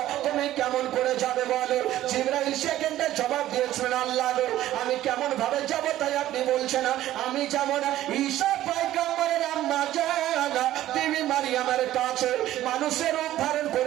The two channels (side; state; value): left; quieter; 13.8 dB